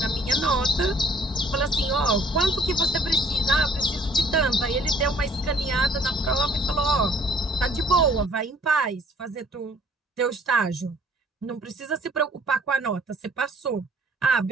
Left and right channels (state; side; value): normal; both; correlation 0.57